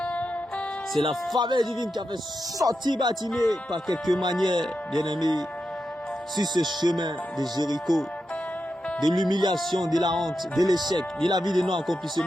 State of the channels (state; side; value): normal; both; correlation 0.88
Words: C'est la faveur divine qui a fait sortir Batimée par quelque manière, bien-aimé, sur ce chemin de Jéricho, de l'humiliation, de la honte, de l'échec, de la vie de